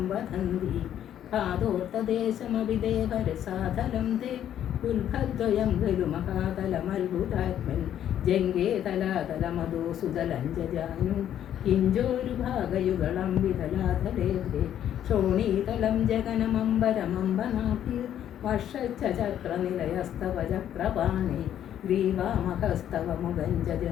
വദന്തി പാദോർത്തദേശമവിദേവരസാധലം തേ ഉൽഭദ്വയം ഖലു മഹാതലമത്ഭുതാത്മൻ ജംഗേ തലാതലമദോ സുതലഞ്ജാനു കിഞ്ചോരുഭാഗയുഗളം വിതലാതലേഭേ ശോണീതലം ജഗനമംബരമംബനാഭി വർഷച്ചക്രനിലയസ്തവ ചക്രപാണി ഗ്രീവാമഹസ്തവ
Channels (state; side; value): quieter; right; 10.6 dB